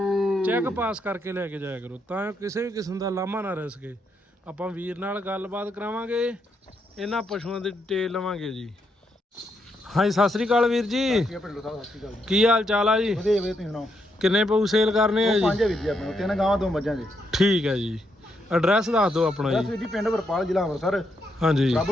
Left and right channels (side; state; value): both; normal; correlation 0.79